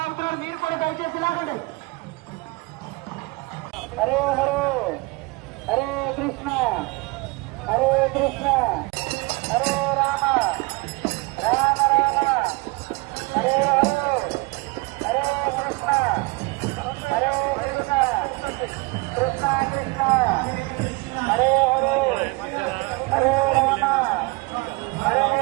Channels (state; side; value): quieter; left; 25.0 dB